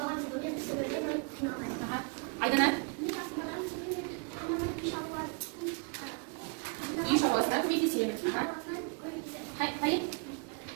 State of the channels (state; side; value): quieter; left; 36.4 dB